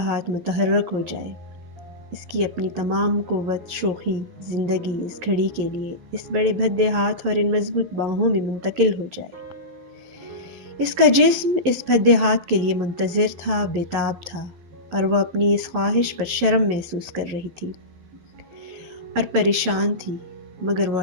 متحرک ہو جائے۔ اس کی اپنی تمام قوت، شوخی، زندگی اس گھڑی کے لیے اس بڑے بھدے ہاتھ اور ان مضبوط باہوں میں منتقل ہو جائے۔ اس کا جسم اس بھدے ہاتھ کے لیے منتظر تھا، بےتاب تھا، اور وہ اپنی اس خواہش پر شرم محسوس کر رہی تھی اور پریشان تھی، مگر وہ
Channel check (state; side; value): late; left; 12 ms